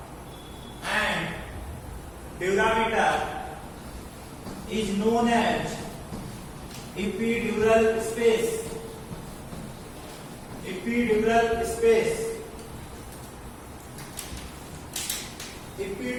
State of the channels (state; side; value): identical; both; correlation 1.00